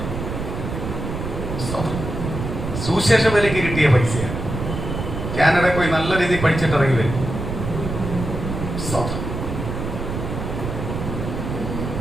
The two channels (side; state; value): right; noise; rumble, 5 dB below the sound